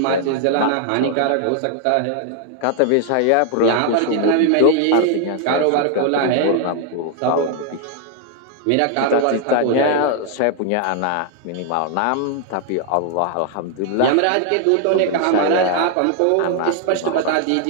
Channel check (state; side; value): different; both; correlation 0.00